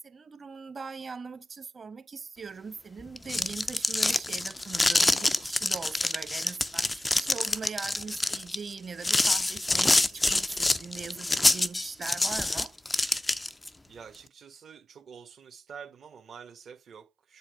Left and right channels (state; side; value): normal; both; correlation 0.97